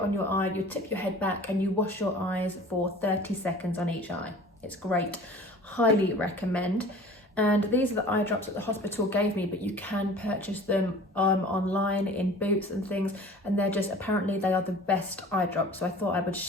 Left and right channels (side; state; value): both; normal; correlation 0.44